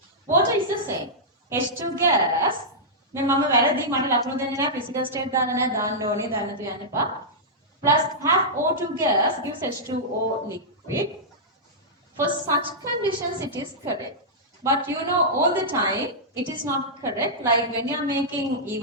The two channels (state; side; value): normal; both; correlation -0.12